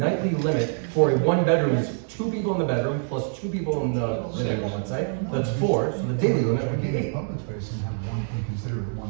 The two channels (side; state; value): left; silent; digital silence